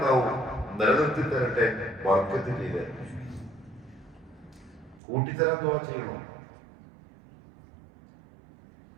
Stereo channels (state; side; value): drops out; left; at 5.0 s